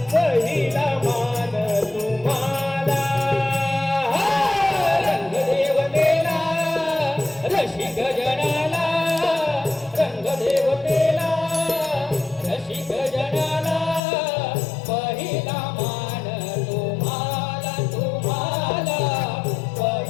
पहिला मान तुम्हाला रंगदेवतेला रसिक जनाला रंगदेवतेला रसिक जनाला पहिला मान तुम्हाला तुम्हाला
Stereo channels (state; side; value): drops out; right; at 14.0 s